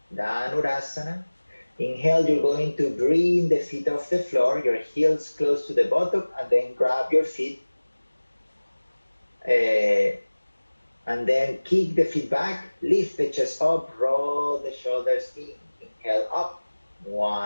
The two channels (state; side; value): inverted; both; correlation -1.00